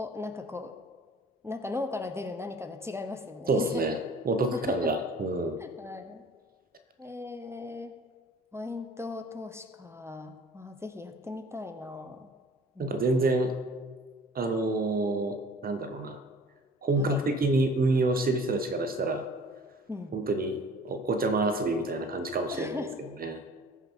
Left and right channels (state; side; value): normal; both; correlation 0.48